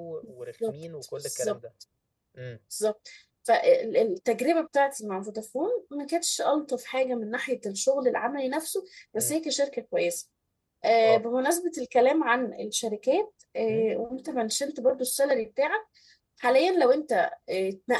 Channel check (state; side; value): identical; both; correlation 1.00